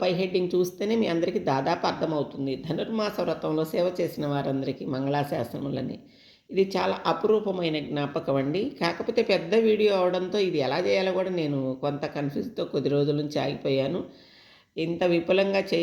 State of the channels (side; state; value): both; identical; correlation 1.00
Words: పై హెడ్డింగ్ చూస్తేనే మీ అందరికీ దాదాపు అర్థమవుతుంది. ధనుర్మాస వ్రతంలో సేవ చేసిన వారందరికీ మంగళాశాసనములని. ఇది చాలా అపురూపమైన జ్ఞాపకం అండి. కాకపోతే పెద్ద వీడియో అవడంతో ఇది ఎలా చేయాలో కూడా నేను కొంత కన్ఫ్యూజ్తో కొద్ది రోజుల నుంచి ఆగిపోయాను. ఇంత విపులంగా